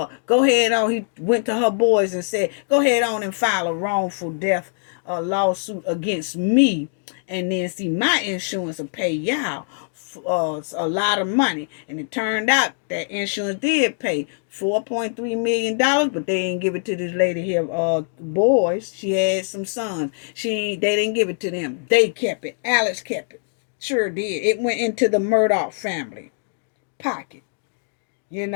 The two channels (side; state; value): right; silent; digital silence